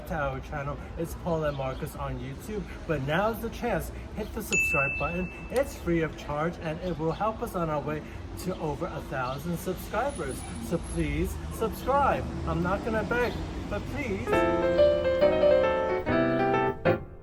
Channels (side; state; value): both; identical; correlation 1.00